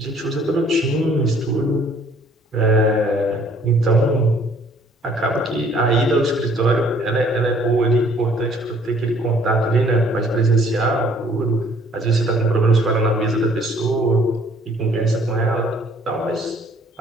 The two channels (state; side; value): normal; both; correlation 0.59